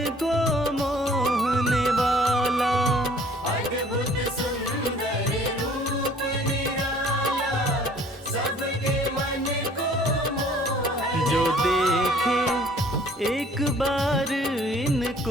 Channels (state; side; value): normal; both; correlation 0.55